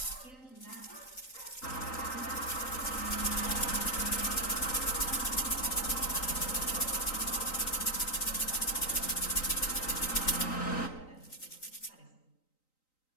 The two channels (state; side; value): late; right; 3.9 ms